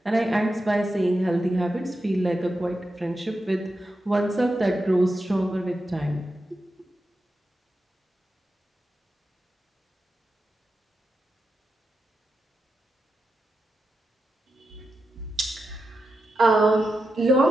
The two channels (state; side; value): normal; both; correlation 0.89